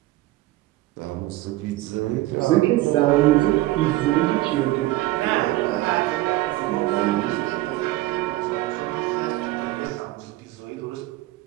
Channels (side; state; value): left; quieter; 17.5 dB